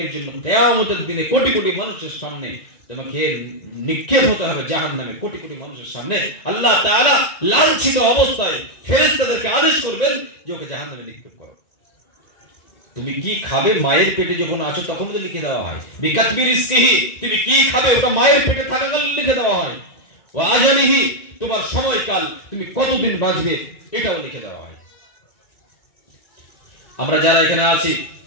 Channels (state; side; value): late; right; 1.9 ms